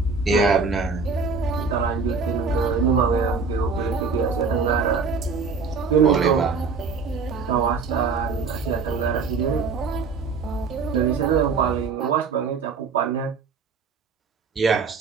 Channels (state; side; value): quieter; left; 4.9 dB